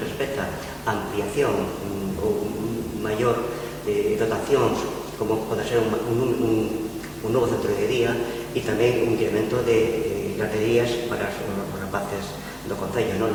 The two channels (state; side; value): identical; both; correlation 1.00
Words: respecta a ampliación ou maior dotacións, como pode ser un novo centro de día e tamén un incremento de garderías para os rapaces do Concello.